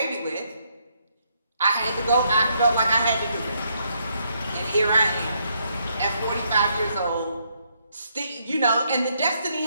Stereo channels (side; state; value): both; inverted; correlation -0.74